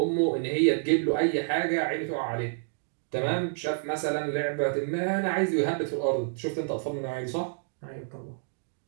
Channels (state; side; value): silent; left; digital silence